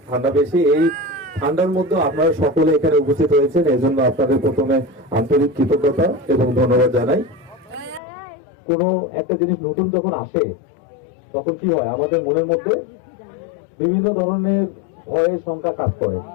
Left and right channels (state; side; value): drops out; right; at 8.0 s